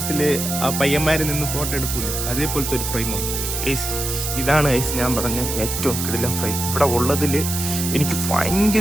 ആ പയ്യന്മാര് നിന്ന് ഫോട്ടോ എടുക്കൂലേ, അതേപോലത്തെ ഒരു ഫ്രെയിമാണ് ഗൈസ്. ഇതാണ് ഗൈസ് ഞാൻ പറഞ്ഞ ഏറ്റവും കിടിലൻ ഫ്രെയിം. ഇവിടെ ഉള്ളതില് എനിക്ക്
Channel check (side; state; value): right; noise; hiss, 4 dB below the sound